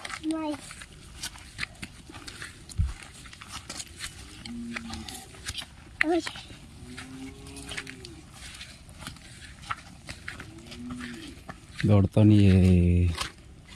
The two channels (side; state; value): both; identical; correlation 1.00